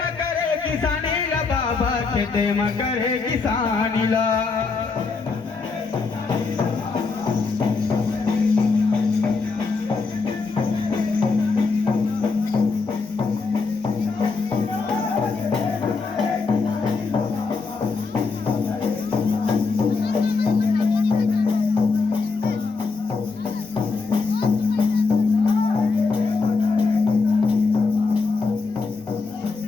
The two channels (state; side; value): quieter; right; 4.4 dB